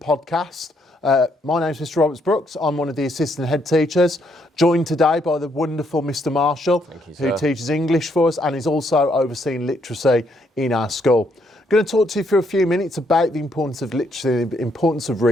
My name is Mr Roberts-Brookes. I'm one of the assistant head teachers, joined today by the wonderful Mr Marshall, who teaches English for us and is also overseeing literacy in our school. I'm going to talk to you for a few minutes about the importance of literacy, the importance of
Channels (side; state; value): both; normal; correlation 0.73